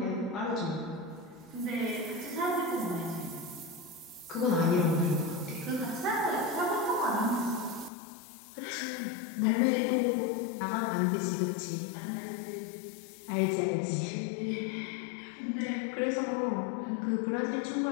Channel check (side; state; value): right; drops out; at 7.9 s